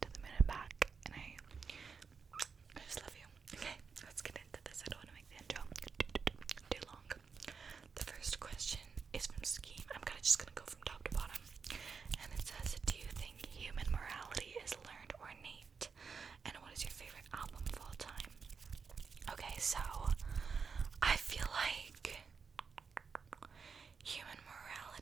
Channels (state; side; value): quieter; left; 5.6 dB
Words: to the moon and back, and I just love you. Okay, let's get into this. I don't want to make the intro too long. The first question is from Scheme. I'm kind of just gonna go from top to bottom, and it says, do you think human morality is learned or innate? And what is your favorite album of all time? Okay, so I feel like human